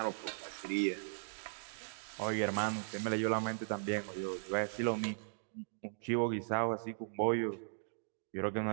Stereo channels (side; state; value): left; silent; digital silence